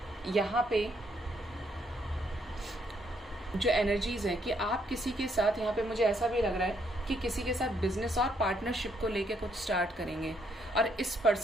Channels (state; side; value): normal; both; correlation 0.72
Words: यहाँ पे जो एनर्जीज हैं कि आप किसी के साथ, यहाँ पे मुझे ऐसा भी लग रहा है कि किसी के साथ बिजनेस और पार्टनरशिप को लेके कुछ स्टार्ट करेंगे, और इस